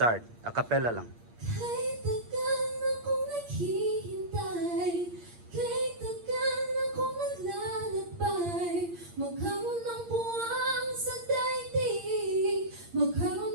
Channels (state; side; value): late; left; 8.6 ms